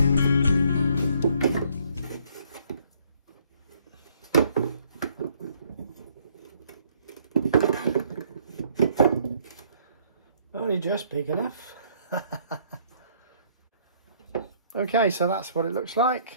Only just big enough. Okay, so that's what it looks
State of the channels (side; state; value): both; inverted; correlation -0.64